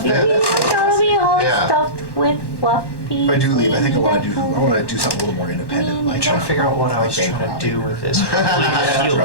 bad. I'll be all Yeah. stuffed with fluffy. If I do leave, I think I want to do something a little more independent. Like Trying to figure out what I was trying to do with this. Heal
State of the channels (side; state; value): right; late; 1.1 ms